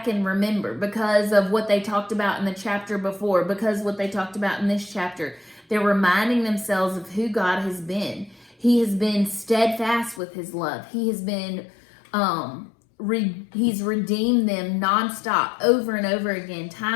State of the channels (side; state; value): right; drops out; at 10.2 s